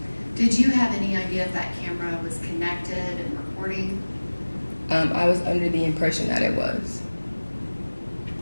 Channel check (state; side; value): inverted; both; correlation -1.00